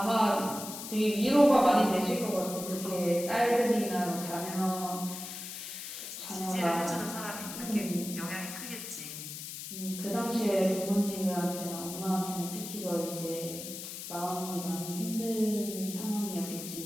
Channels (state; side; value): noise; left; hiss, 9 dB below the sound